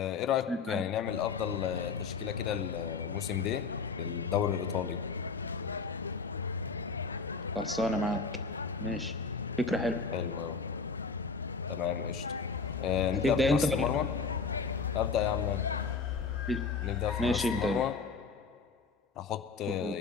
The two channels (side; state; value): right; quieter; 4.8 dB